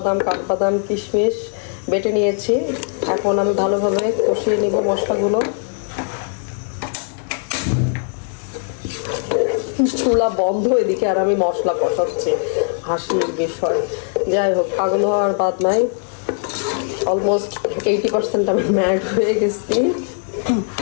কাঠবাদাম, কিশমিশ বেটে নিয়েছি। এখন আমি ভালোভাবে কষিয়ে নিব মশলাগুলো। চুলা বন্ধ এদিকে আর আমি মশলা কষাচ্ছি, হাসির বিষয়। যাই হোক, পাগল হওয়ার বাদ নাই। অলমোস্ট 80% আমি ম্যাড হয়ে গেছি।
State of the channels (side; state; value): right; silent; 56 dB below the other